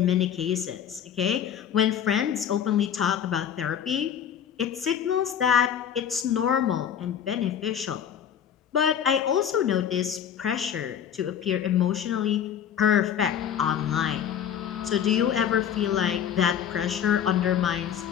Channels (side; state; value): right; quieter; 8.9 dB